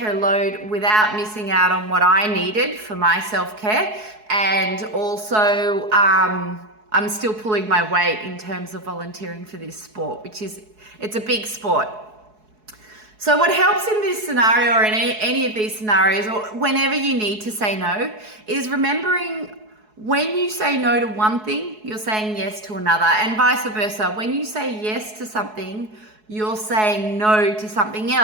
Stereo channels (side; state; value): left; late; 4.7 ms